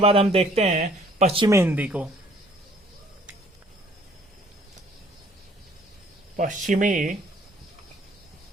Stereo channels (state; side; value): normal; both; correlation 0.58